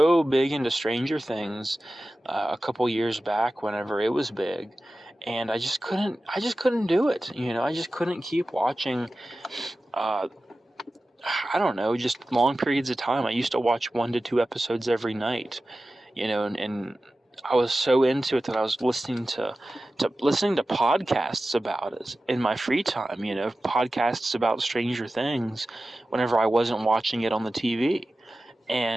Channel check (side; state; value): both; normal; correlation 0.95